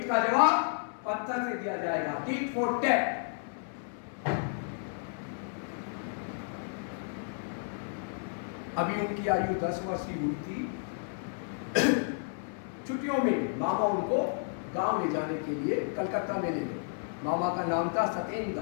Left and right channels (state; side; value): silent; right; 56 dB below the other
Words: का जवाब पत्थर से दिया जाएगा, टीट फॉर टैट। अभी उनकी आयु 10 वर्ष की हुई थी। छुट्टियों में मामा उनको गांव ले जाने के लिए कलकत्ता में ले गए। मामा का नाम था